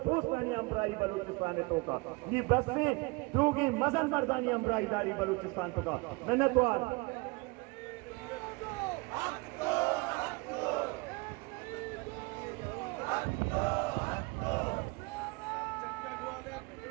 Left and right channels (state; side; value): quieter; left; 27.3 dB